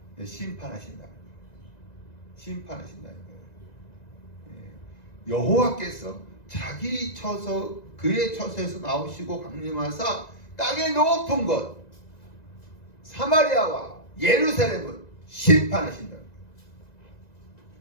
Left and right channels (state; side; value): late; right; 1.9 ms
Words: 심판하신다. 여호와께서 그의 처소에서 나오시고 강림하사 땅의 높은 곳 사마리아와 예루살렘을 심판하신다.